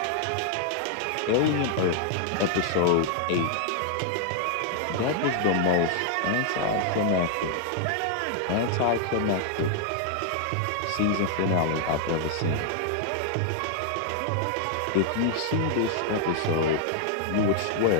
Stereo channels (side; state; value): both; different; correlation 0.00